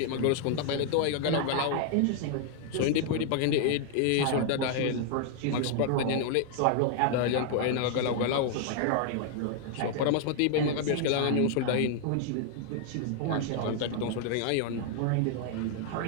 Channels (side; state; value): both; different; correlation 0.00